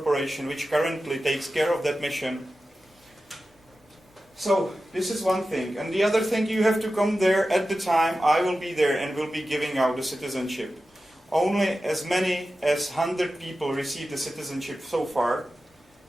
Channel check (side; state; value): both; normal; correlation 0.93